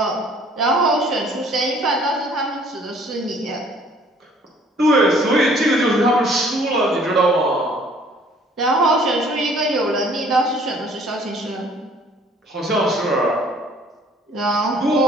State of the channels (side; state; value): both; normal; correlation 0.57